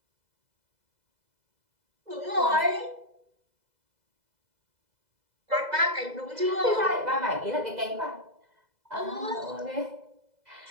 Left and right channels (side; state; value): left; late; 2.0 ms